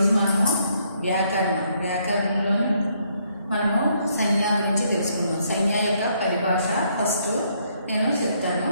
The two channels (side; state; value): both; inverted; correlation -0.71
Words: మనము వ్యాకరణంలో మనము సంజ్ఞ గురించి తెలుసుకుందాం. సంజ్ఞ యొక్క పరిభాష ఫస్ట్ నేను చెప్తాను,